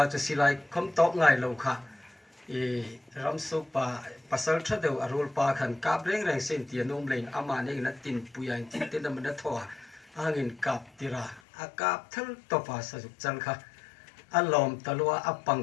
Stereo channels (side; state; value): right; drops out; at 11.4 s